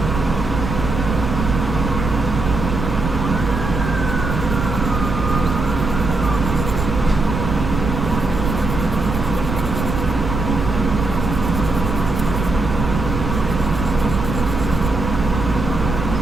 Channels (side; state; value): right; noise; rumble, 4 dB below the sound